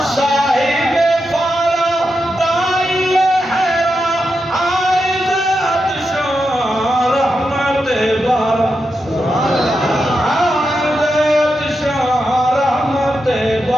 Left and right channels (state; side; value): normal; both; correlation 0.87